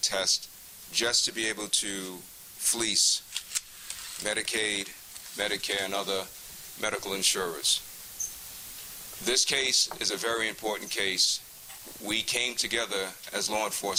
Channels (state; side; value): identical; both; correlation 1.00